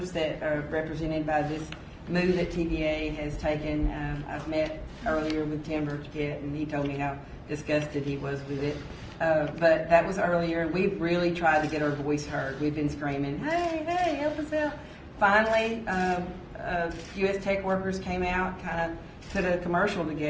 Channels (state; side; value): identical; both; correlation 1.00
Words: that are represented by this move that TVA has taken. I've met earlier with Tim Burkett, and he told me how disgusted he was with it. But that was earlier, and we've really tried to get our voice heard. We've been screaming, hey, help us out. Finally, U.S. Tech workers came out, kind of put a commercial